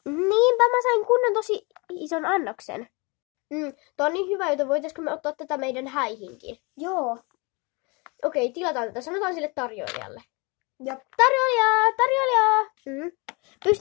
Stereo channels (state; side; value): quieter; right; 28.7 dB